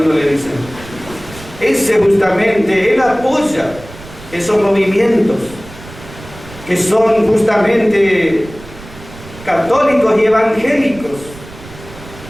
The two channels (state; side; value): noise; right; rumble, 17 dB below the sound